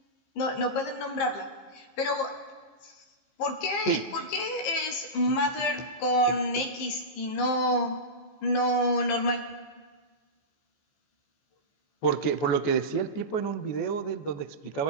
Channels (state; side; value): late; right; 15 ms